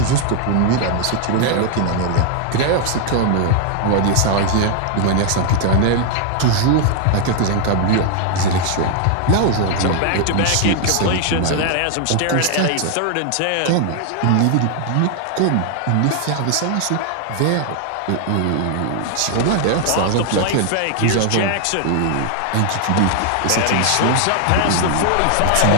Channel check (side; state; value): both; different; correlation 0.00